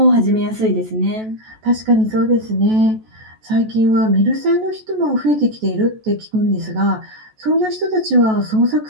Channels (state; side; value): late; left; 14 ms